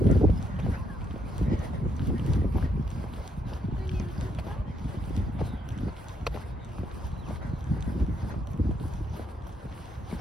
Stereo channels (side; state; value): both; normal; correlation 0.74